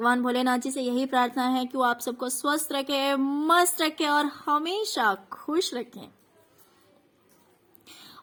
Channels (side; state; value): both; identical; correlation 1.00